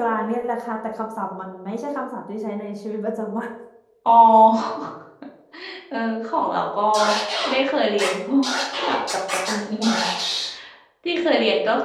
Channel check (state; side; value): identical; both; correlation 1.00